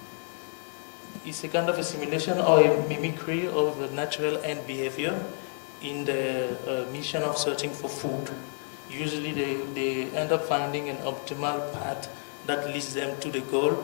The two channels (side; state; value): right; silent; 56 dB below the other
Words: It's a kind of a simulation or a mimicry of the natural ant behavior in the mission of searching for food. Usually they end up finding an optimal path that leads them to the goal